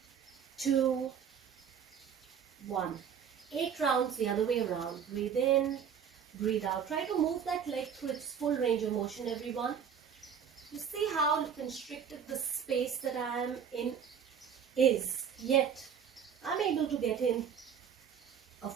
2, 1. 8 rounds the other way around. Breathe in, breathe out. Try to move that leg through its full range of motion, everyone. You see how constricted the space that I am in is. Yet, I'm able to get in a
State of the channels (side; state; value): left; quieter; 7.7 dB